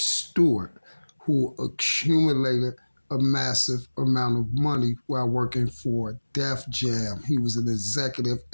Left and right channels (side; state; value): both; inverted; correlation -1.00